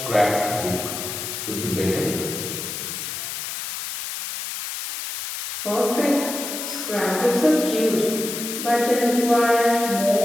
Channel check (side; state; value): left; noise; hiss, 6 dB below the sound